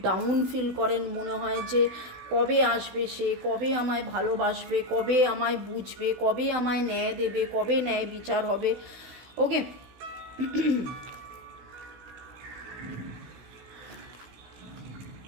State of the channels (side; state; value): left; late; 16 ms